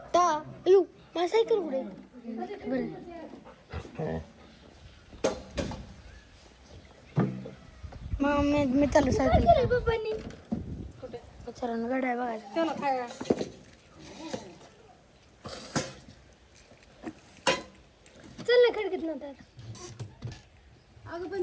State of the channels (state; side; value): identical; both; correlation 1.00